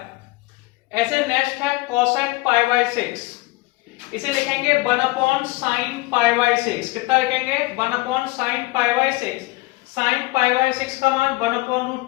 ऐसे नेक्स्ट है कोसेक पाई बाय 6। इसे लिखेंगे 1 अपॉन साइन पाई बाय 6। कितना लिखेंगे? 1 upon sine pi by 6। Sine pi by 6 का मान 1 अपॉन रूट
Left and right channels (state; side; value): quieter; right; 22.6 dB